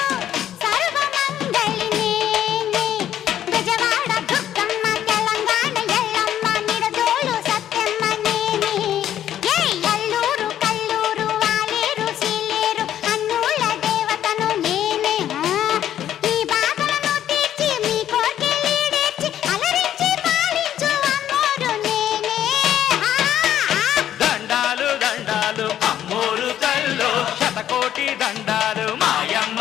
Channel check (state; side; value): quieter; right; 11.1 dB